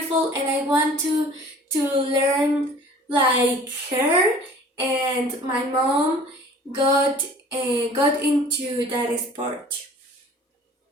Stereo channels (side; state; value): both; normal; correlation 0.48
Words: and I want to learn like her." And my mom got into that sport,